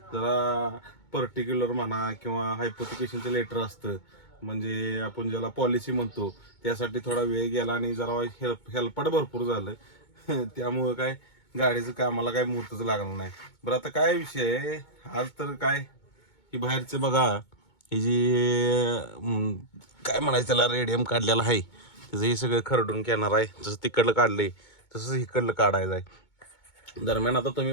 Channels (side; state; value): right; late; 2.2 ms